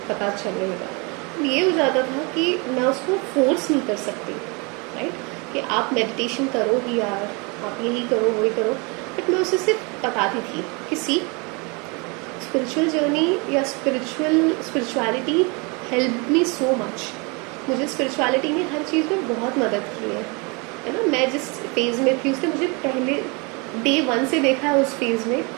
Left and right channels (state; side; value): quieter; left; 30.1 dB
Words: पता चलने लगा। ये हो जाता था कि मैं उसको फोर्स नहीं कर सकती, राइट, कि आप मेडिटेशन करो ही यार, आप यही करो वही करो। बट मैं उसे सिर्फ बताती थी कि सी, स्पिरिचुअल जर्नी या spirituality help me so much. मुझे स्पिरिचुअलिटी ने हर चीज़ में बहुत मदद की है ना। मैं जिस फेज़ में थी उसने मुझे पहले डे 1 से देखा है। उस फेज़ में